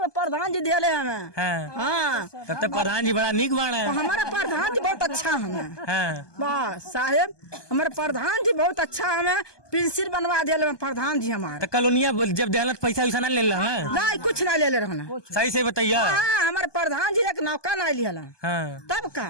में प्रधान जी दिया हमें। हाँ, हाँ, तब तक प्रधान जी बड़ा नीक बाण है। हमारा प्रधान जी बहुत अच्छा हमें। हाँ, वाह साहेब, हमारे प्रधान जी बहुत अच्छा हमें पेंसिल बनवा दिया प्रधान जी हमारे। तो कॉलोनिया जब देहलत पैसा वैसा ना ले ला? नहीं, कुछ ना ले रहना। सही से बताइए। हाँ, हमारे प्रधान जी एक नौका ना लिया। हाँ, तब का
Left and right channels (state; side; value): late; right; 1.2 ms